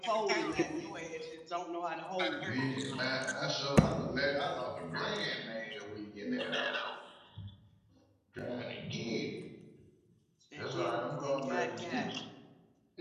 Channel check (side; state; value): both; identical; correlation 1.00